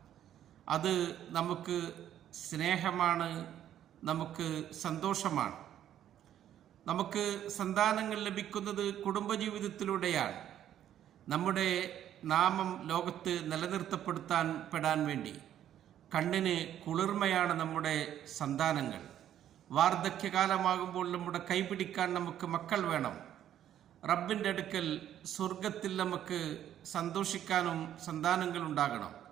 അത് നമുക്ക് സ്നേഹമാണ്, നമുക്ക് സന്തോഷമാണ്. നമുക്ക് സന്താനങ്ങൾ ലഭിക്കുന്നത് കുടുംബജീവിതത്തിലൂടെയാണ്. നമ്മുടെ നാമം ലോകത്ത് നിലനിർത്തപ്പെടാൻ വേണ്ടി കണ്ണിന് കുളിർമയാണ് നമ്മുടെ സന്താനങ്ങൾ. വാർദ്ധക്യകാലമാകുമ്പോൾ നമ്മുടെ കൈപിടിക്കാൻ നമുക്ക് മക്കൾ വേണം. റബ്ബിൻ്റെ അടുക്കൽ സ്വർഗത്തിൽ നമുക്ക് സന്തോഷിക്കാനും സന്താനങ്ങൾ ഉണ്ടാകണം.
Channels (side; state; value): left; quieter; 10.9 dB